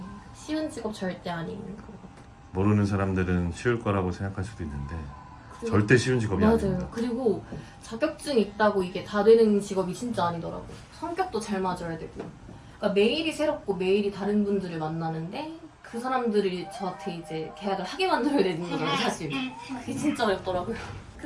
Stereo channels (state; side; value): identical; both; correlation 1.00